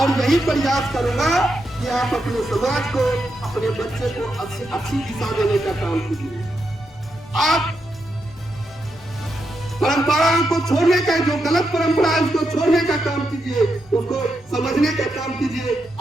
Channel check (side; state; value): both; normal; correlation 0.84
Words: यही प्रयास करूंगा कि आप अपने समाज को, अपने बच्चे को अच्छी दिशा देने का काम कीजिए। आप परंपराओं को छोड़ने का, जो गलत परंपरा है उसको छोड़ने का काम कीजिए, उसको समझने का काम कीजिए।